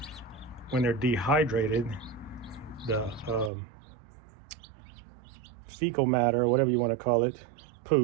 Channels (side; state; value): left; drops out; at 3.5 s